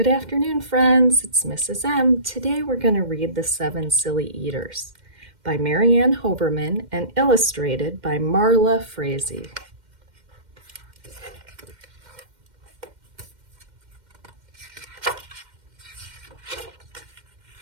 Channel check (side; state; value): left; late; 2.1 ms